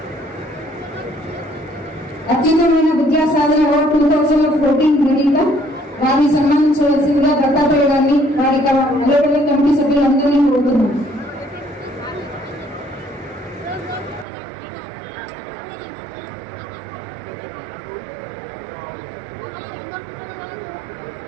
అత్యుత్తమైన విద్యా సాధన అవార్డు 2014 గ్రహీత. వారిని సన్మానించవలసిందిగా దత్తాత్రేయ గారిని వారి అలవడి కమిటీ సభ్యులందరినీ కోరుతున్నాం.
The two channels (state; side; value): drops out; left; at 14.2 s